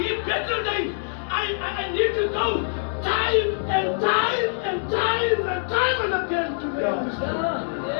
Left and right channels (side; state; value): right; silent; digital silence